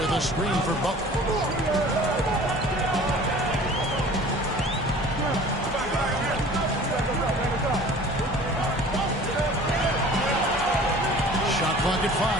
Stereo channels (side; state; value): both; normal; correlation 0.45